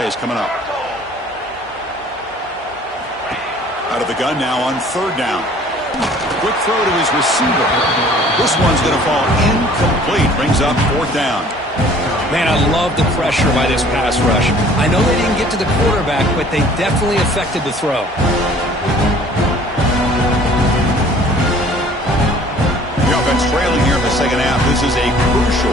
coming up. Out of the gun now on 3rd down. Quick throw to his receiver. This one's going to fall incomplete. Brings up 4th down. Man, I love the pressure by this pass rush. I know they didn't get to the quarterback, but they definitely affected the throw. The offense trailing here in the 2nd half. This is a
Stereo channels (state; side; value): normal; both; correlation 0.52